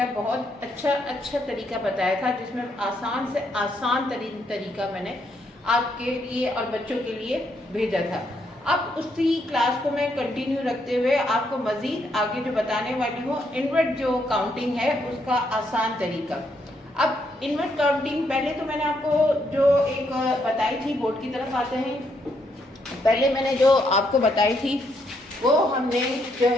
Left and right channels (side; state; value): both; normal; correlation 0.75